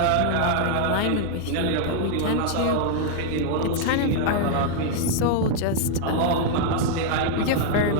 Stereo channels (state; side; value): different; both; correlation -0.01